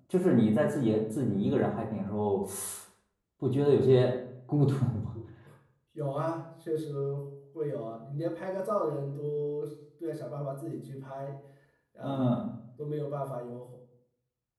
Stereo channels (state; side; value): identical; both; correlation 1.00